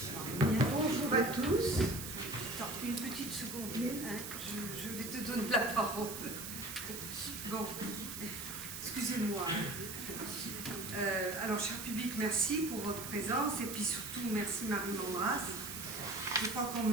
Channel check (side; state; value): right; noise; hiss, 8 dB below the sound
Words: Bonjour à tous. Attends, une petite seconde. Hein, je vais te donner la parole. Bon, excusez-moi. Alors, cher public, merci pour votre présence et puis surtout, merci Marie Mandras. Je crois qu'on